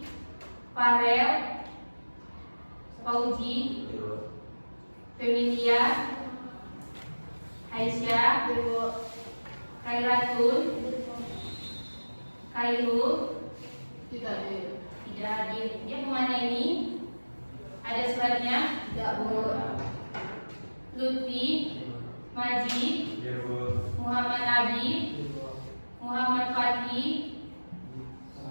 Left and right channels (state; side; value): inverted; both; correlation -1.00